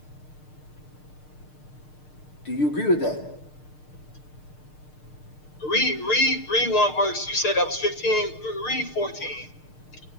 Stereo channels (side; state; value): right; late; 6.6 ms